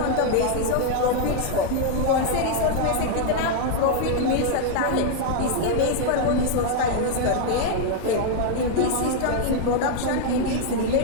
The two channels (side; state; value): both; different; correlation 0.00